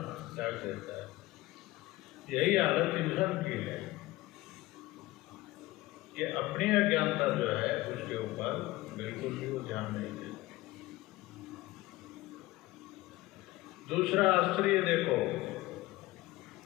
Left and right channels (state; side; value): quieter; right; 18.5 dB